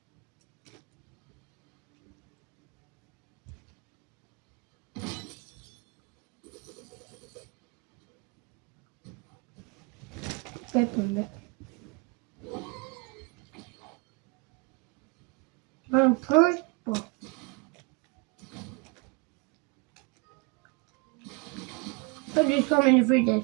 Peppunde. I'm purple. But it's coming in the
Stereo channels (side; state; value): left; quieter; 29.3 dB